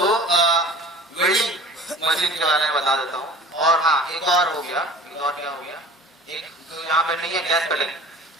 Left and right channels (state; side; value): normal; both; correlation 0.44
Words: वेल्डिंग मशीन के बारे में बता देता हूँ। और हाँ, एक और हो गया, एक और क्या हो गया, एक तो यहाँ पे नहीं है गैस कटिंग।